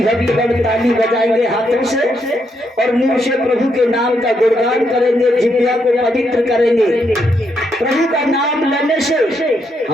भक्तगण ताली बजाएंगे हाथों से, और मुंह से प्रभु के नाम का गुणगान करेंगे, जिह्वा को पवित्र करेंगे। प्रभु का नाम लेने से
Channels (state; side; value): normal; both; correlation 0.78